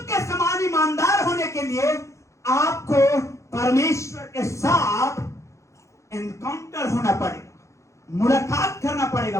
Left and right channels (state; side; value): late; right; 0.14 ms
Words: के समान ईमानदार होने के लिए आपको परमेश्वर के साथ एनकाउंटर होना पड़ेगा, मुलाकात करना पड़ेगा